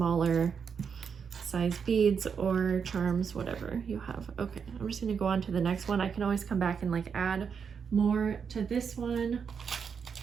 size beads or charms, whatever you have. Okay, I'm just gonna go on to the next one. I can always come back and like add more to this one.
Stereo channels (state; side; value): quieter; left; 6.5 dB